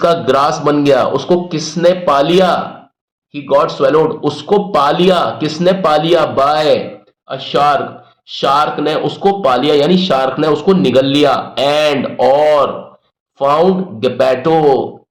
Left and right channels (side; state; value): both; identical; correlation 1.00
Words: ग्रास बन गया, उसको किसने पा लिया, ही गॉट स्वेलोड उसको पा लिया, किसने पा लिया, बाय अ शार्क, शार्क ने उसको पा लिया यानी शार्क ने उसको निगल लिया, एंड और, फाउंड गपैटो,